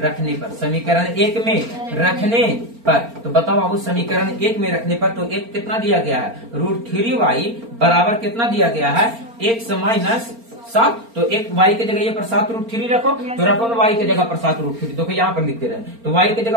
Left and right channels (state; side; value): late; left; 4.3 ms